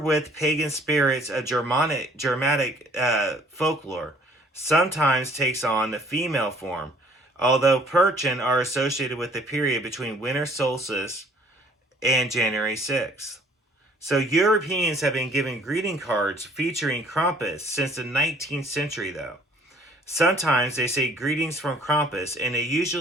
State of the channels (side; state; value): both; normal; correlation 0.56